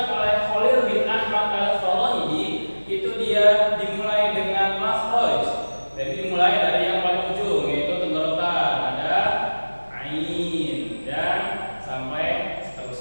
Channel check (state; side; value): inverted; both; correlation -1.00